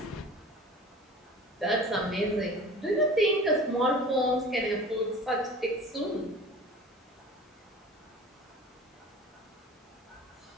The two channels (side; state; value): both; normal; correlation 0.41